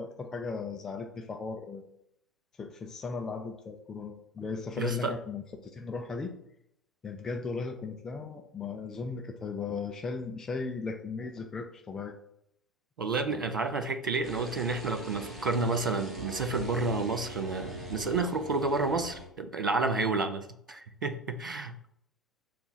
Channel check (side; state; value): both; normal; correlation 0.31